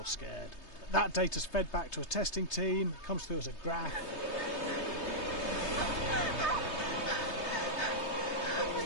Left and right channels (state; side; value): late; right; 3.2 ms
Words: scared. That data's fed back to a testing team, comes through as a graph. I'm